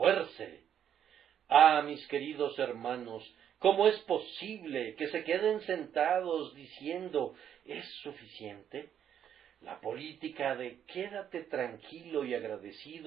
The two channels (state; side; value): quieter; left; 9.4 dB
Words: Ah, mis queridos hermanos, ¿cómo es posible que se queden sentados diciendo ¿es suficiente? La política de quédate tranquilo y